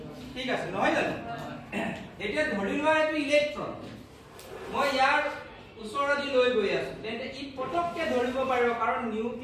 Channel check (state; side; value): identical; both; correlation 1.00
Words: ঠিক আছে নহয় জানো এতিয়া ধৰি লোৱা এটো ইলেক্ট্ৰন মই ইয়াৰ ওচৰদি লৈ গৈ আছো তেন্তে ই পটককে ধৰিব পাৰিব কাৰণ